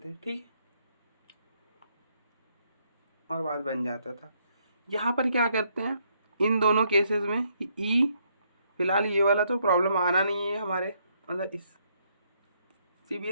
ठीक, और बात बन जाता था। यहाँ पर क्या करते हैं इन दोनों केसेस में कि ई, फिलहाल ये वाला तो प्रॉब्लम आना नहीं है हमारे, मतलब इस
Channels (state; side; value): inverted; both; correlation -0.72